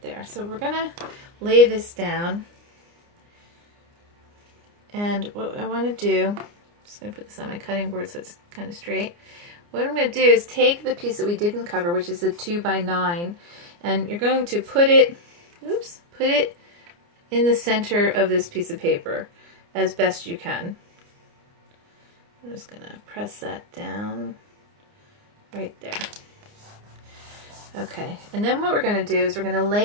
there. So we're going to lay this down. And what I want to do, I'm just going to put this on my cutting board so it's kind of straight. What I'm going to do is take the piece that we didn't cover, which is a 2x9, and you're going to put it in the center of this piece of paper as best you can. I'm just going to press that down right there. Okay, and then what we're going to do is we're going to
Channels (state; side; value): late; left; 29 ms